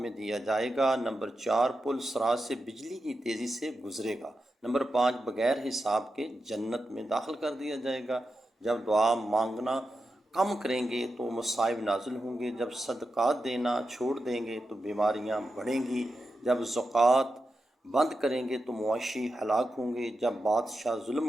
دیا جائے گا۔ نمبر 4، پل صراط سے بجلی کی تیزی سے گزرے گا۔ نمبر 5، بغیر حساب کے جنت میں داخل کر دیا جائے گا۔ جب دعا مانگنا کم کریں گے تو مصائب نازل ہوں گے۔ جب صدقات دینا چھوڑ دیں گے تو بیماریاں بڑھیں گی۔ جب زکوٰۃ بند کریں گے تو معاشی ہلاک ہوں گے۔ جب بادشاہ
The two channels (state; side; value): normal; both; correlation 0.89